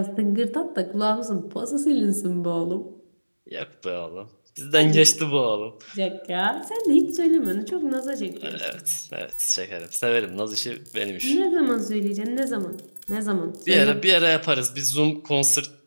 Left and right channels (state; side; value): inverted; both; correlation -1.00